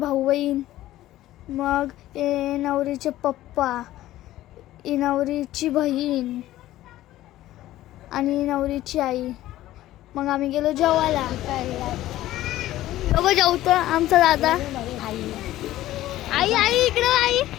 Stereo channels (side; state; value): right; quieter; 14.8 dB